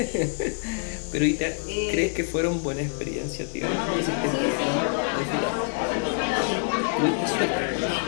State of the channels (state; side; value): silent; right; 61 dB below the other